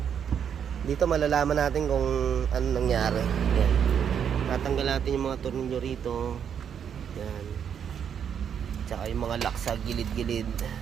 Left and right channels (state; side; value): quieter; left; 8.1 dB